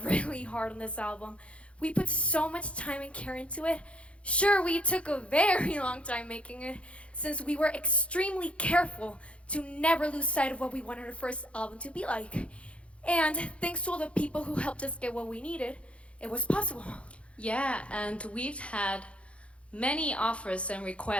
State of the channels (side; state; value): right; late; 0.061 ms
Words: really hard on this album. We put so much time and care into it. Sure, we took a very long time making it since we were extremely careful to never lose sight of what we wanted our first album to be like. And thanks to all the people who helped us get what we needed, it was possible. Yeah, and we've had many offers and